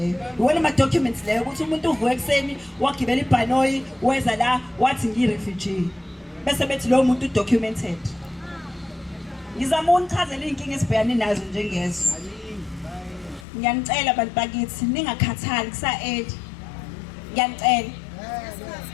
Iwona ama-documents leyo ukuthi umuntu uvuke ekuseni wagibela ibhanoyi weza la wathi ngiyi-refugee bese bethi lowo muntu udocumented. Ngizama unichazela iy'nkinga esibhekane nazo njengezo. Ngiyanicela abantu bakithi ningakhathali kusa-8.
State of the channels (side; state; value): right; drops out; at 13.5 s